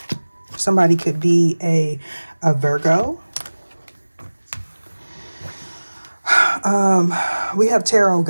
Somebody could be a Virgo. We have tarot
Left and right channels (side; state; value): both; inverted; correlation -1.00